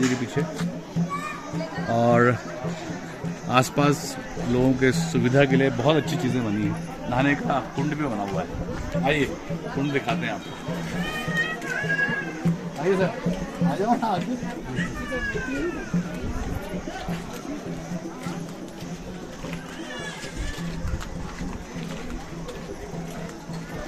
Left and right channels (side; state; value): both; identical; correlation 1.00